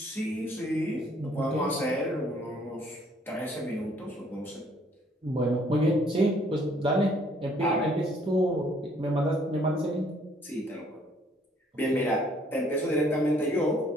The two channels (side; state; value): both; normal; correlation 0.63